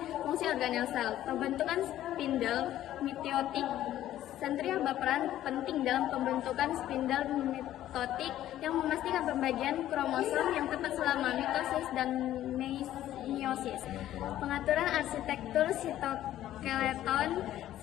Fungsi organel sel. Pembentukan spindel mitotik. Sentriol berperan penting dalam pembentukan spindel mitotik yang memastikan pembagian kromosom yang tepat selama mitosis dan meiosis. Pengaturan arsitektur sitoskeleton.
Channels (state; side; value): quieter; right; 12.9 dB